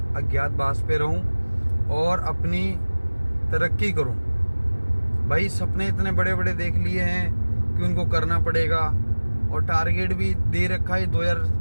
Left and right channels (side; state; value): both; inverted; correlation -1.00